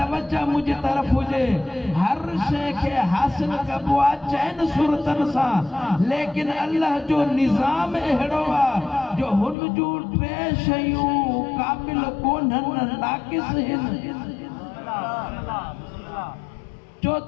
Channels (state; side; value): drops out; right; at 9.6 s